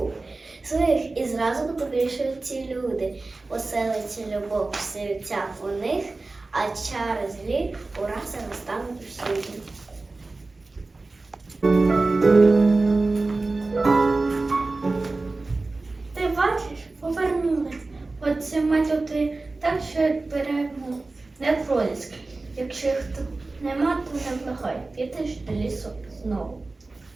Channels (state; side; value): quieter; left; 3.4 dB